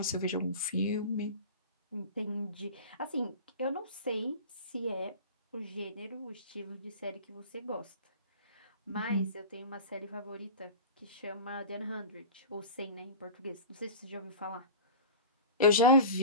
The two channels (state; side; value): inverted; both; correlation -0.32